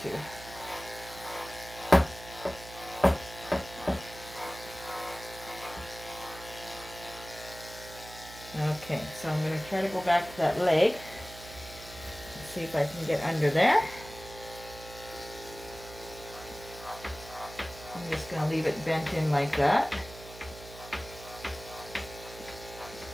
too. Okay, so I'm going to try to go back to that leg and see if I can get under there. I'm just going to leave it bent in like that,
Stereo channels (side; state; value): right; noise; hum, 16 dB below the sound